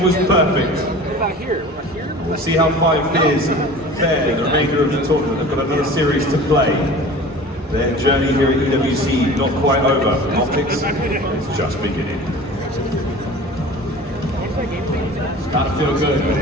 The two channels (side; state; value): both; normal; correlation 0.40